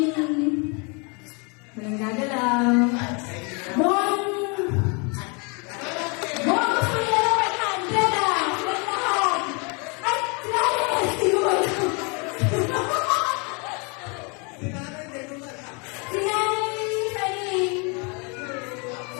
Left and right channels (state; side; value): quieter; right; 32.8 dB